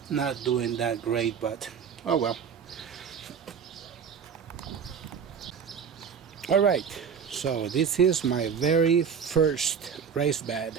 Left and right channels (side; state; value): left; quieter; 6.9 dB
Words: not doing that great, but oh well. Alright, so this is my very first raised bed